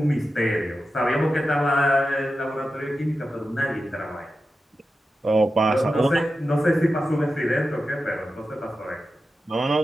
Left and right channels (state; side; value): normal; both; correlation 0.91